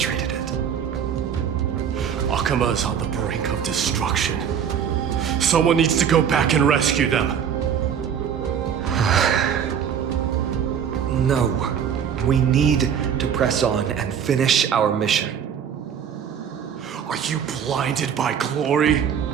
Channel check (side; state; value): left; quieter; 8.1 dB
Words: it. Akama is on the brink of destruction. Someone needs to go back and rescue them. No. We need to press on and finish our mission. Are you blinded by glory?